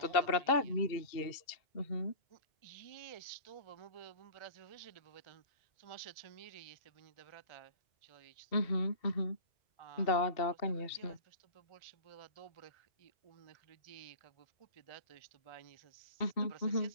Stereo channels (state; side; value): late; right; 2.7 ms